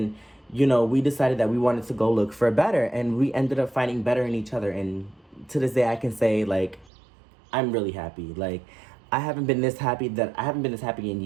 you know, we decided that we wanted to go look for better. And we ended up finding better in each other. And to this day, I can say, like, I'm really happy. Like, I haven't been this happy in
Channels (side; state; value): left; drops out; at 6.9 s